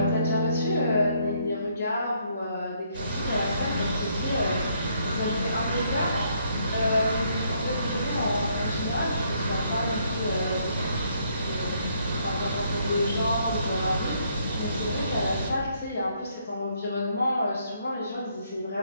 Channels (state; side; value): inverted; both; correlation -0.70